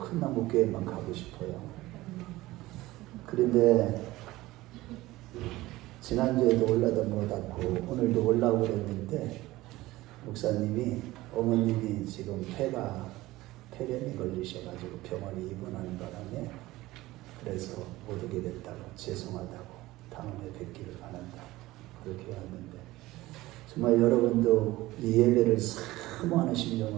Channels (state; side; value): quieter; left; 18.1 dB